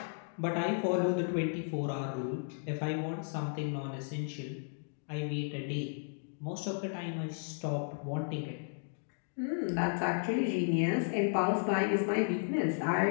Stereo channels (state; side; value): silent; right; digital silence